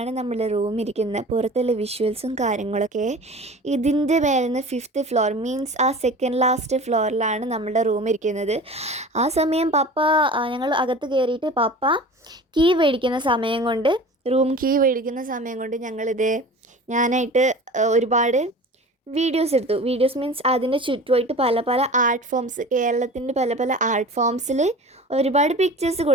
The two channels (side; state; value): both; normal; correlation 0.38